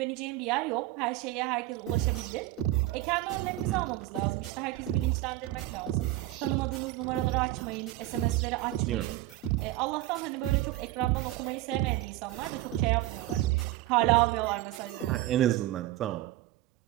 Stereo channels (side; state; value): left; quieter; 16.4 dB